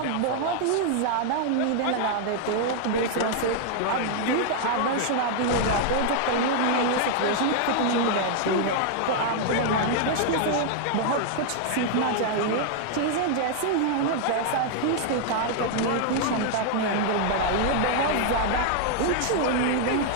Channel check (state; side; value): different; both; correlation 0.00